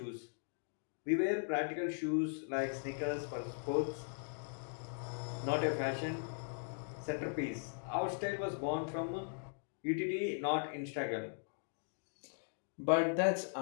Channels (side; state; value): right; silent; digital silence